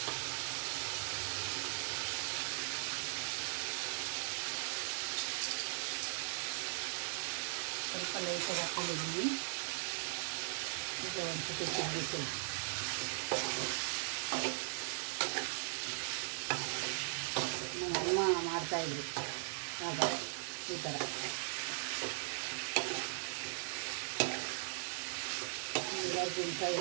ಸ್ವಲ್ಪ ಲೈಟಾಗಿ ಹಾಕ್ಕೊಂಡಿದ್ದೀನಿ. ಈಗ ಒಂದು ಸತಿ ತಿರುಗಿಸಿ ನಮ್ಮ ಅಮ್ಮ ಮಾಡ್ತಾಯಿದ್ರು ಆಗ ಈ ಥರ. ಲಿವರ್ ಗುಂಡ್ಕಾಯಿ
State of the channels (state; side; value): silent; left; digital silence